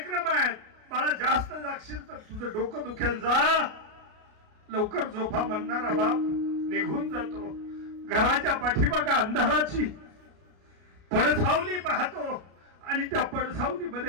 आहेत. बाळा जास्त जागशील तर तुझं डोकं दुखेल, जा लवकर झोपा म्हणणारा बाप निघून जातो. घराच्या पाठीमागा अंधाराची पडसावली पाहतो आणि त्या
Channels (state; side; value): late; left; 33 ms